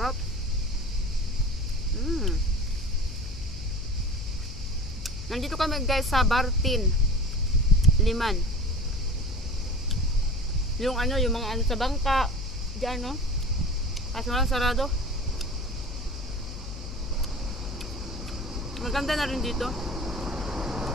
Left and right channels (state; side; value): noise; left; hum, 10 dB below the sound